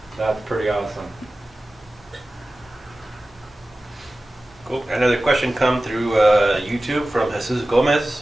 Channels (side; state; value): both; normal; correlation 0.96